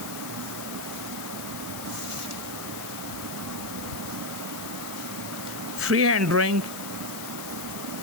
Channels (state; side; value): noise; left; hiss, 8 dB below the sound